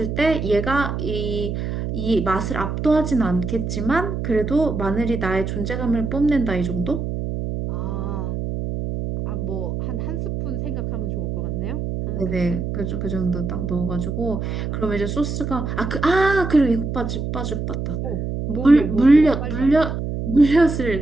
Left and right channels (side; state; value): right; noise; hum, 3 dB below the sound